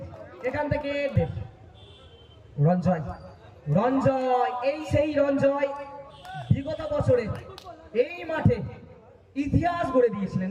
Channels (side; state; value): both; identical; correlation 1.00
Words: এখান থেকে রঞ্জয়, এই সেই রঞ্জয় বিগত বছরে এই মাঠে ইতিহাস গড়ে দিয়েছিলেন,